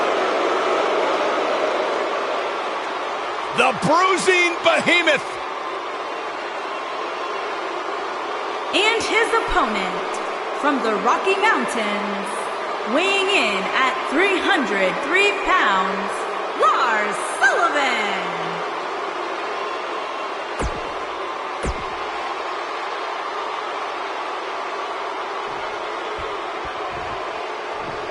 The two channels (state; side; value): identical; both; correlation 1.00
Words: The bruising behemoth. And his opponent from the Rocky Mountains, weighing in at 303 pounds, Lars Sullivan.